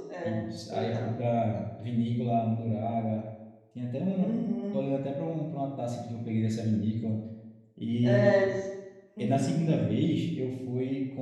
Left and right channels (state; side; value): identical; both; correlation 1.00